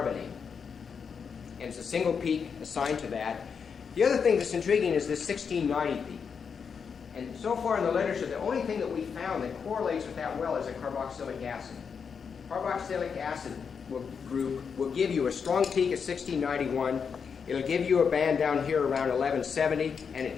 And it's a single peak assigned to that. The other thing that's intriguing is this 1690 peak. And so far in the literature, the only thing that we found that correlates with that well is a carboxylic acid. Carboxylic acid group will give you a strong peak at 1691. It'll give you a band down here around 1170, and it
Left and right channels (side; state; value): right; quieter; 6.3 dB